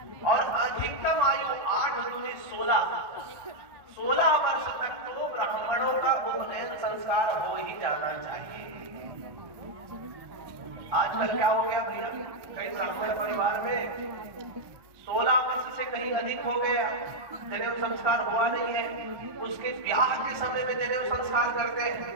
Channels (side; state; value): left; late; 1.2 ms